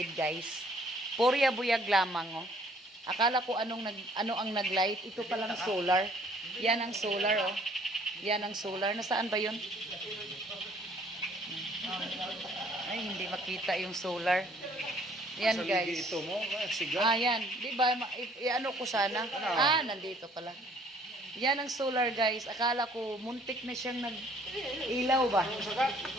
guys. Porya buyag lamang oh. Akala ko ano ang naglight. Ito palang solar. Yan ang solar oh. Yan ang solar. Nasaan ba 'yon? Ay, hindi makita yung solar. Yan guys. Ito mo, sigat. Yan. Di ba? Ano ko sana? Nandito pala. Yan ang solar guys. Akala ko muntik na siyang nag-ilaw ba?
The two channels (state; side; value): normal; both; correlation 0.59